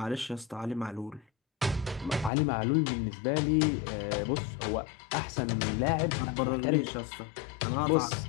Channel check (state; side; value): drops out; right; at 2.3 s